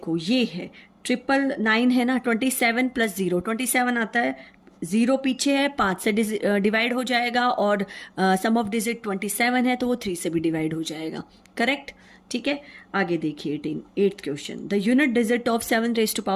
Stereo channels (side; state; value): both; identical; correlation 1.00